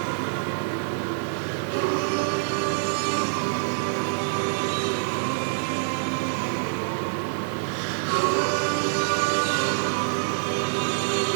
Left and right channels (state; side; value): silent; left; 61 dB below the other